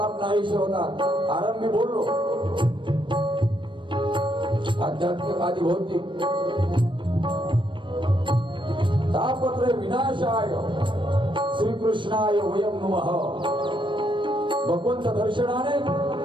नाहीसे होतात. आरंभी बोललो आध्यात्मिक आदि भौतिक. तापत्र विनाशाय श्रीकृष्णाय वयं नमः. भगवंत दर्शनाने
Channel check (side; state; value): left; late; 0.24 ms